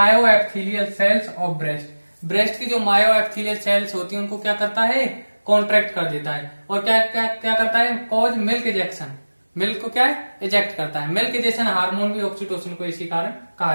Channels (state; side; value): inverted; both; correlation -1.00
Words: epithelial cells of breast. Breast की जो मायो एपिथेलियल सेल्स होती है उनको क्या करता है, कॉन्ट्रैक्ट कर देता है। और क्या क्या क्या करता है, कॉज मिल्क इजेक्शन, मिल्क को क्या है, इजेक्ट करता है। मिल्क इजेक्शन हार्मोन भी ऑक्सीटोसिन को इसी कारण कहा